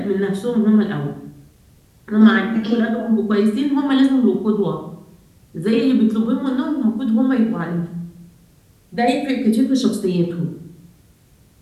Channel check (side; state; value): both; identical; correlation 1.00